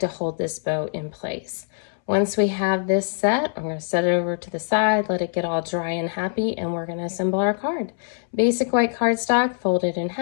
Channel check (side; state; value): right; silent; 63 dB below the other